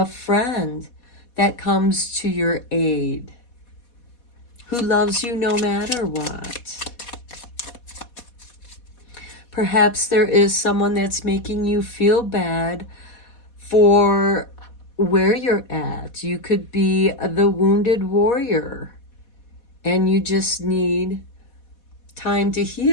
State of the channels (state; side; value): late; right; 4.2 ms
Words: friend that comes to your aid, who loves you no matter what. Perhaps there is someone that's making you feel bad for where you're at. You could be the wounded warrior and you just need time to